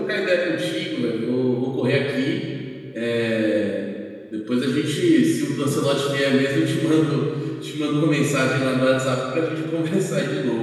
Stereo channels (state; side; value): identical; both; correlation 1.00